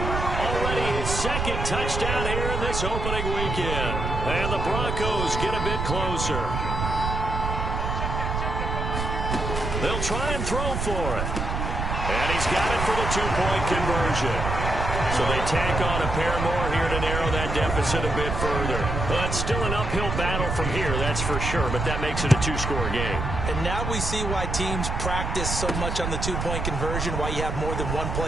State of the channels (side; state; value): right; noise; rumble, 2 dB below the sound